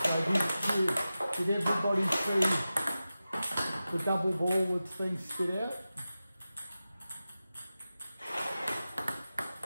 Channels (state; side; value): inverted; both; correlation -0.94